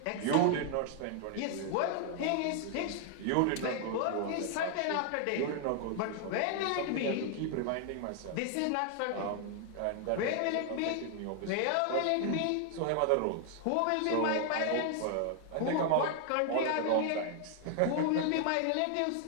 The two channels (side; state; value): both; different; correlation 0.00